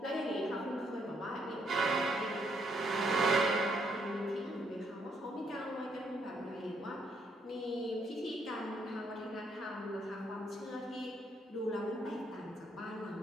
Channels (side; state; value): both; normal; correlation 0.72